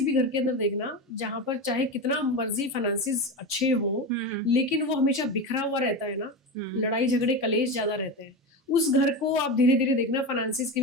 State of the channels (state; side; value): normal; both; correlation 0.20